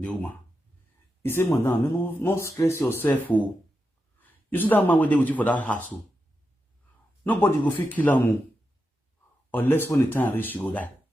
woman. He said, Madam, no stress yourself. Oh. You see that man went there with you for that hassle. Nobody go feel kill him. Unless when the time reach, you go die.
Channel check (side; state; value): both; normal; correlation 0.88